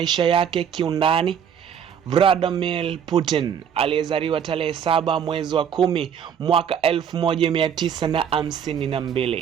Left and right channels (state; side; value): quieter; left; 8.2 dB